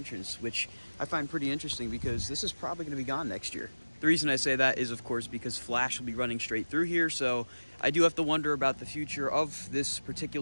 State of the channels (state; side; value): inverted; both; correlation -1.00